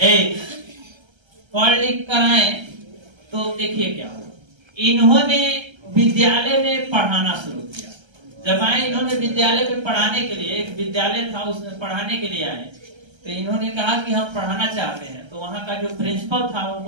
कराएं तो देखिए क्या हुआ। इन्होंने विद्यालय में पढ़ाना शुरू किया। जब आए इन्होंने विद्यालय में पढ़ाने के लिए, एक विद्यालय था उसमें पढ़ाने के लिए आए, तो इन्होंने कहा कि हम पढ़ाना चाहते हैं। तो वहां का जो प्रिंसिपल था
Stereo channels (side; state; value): left; late; 1.3 ms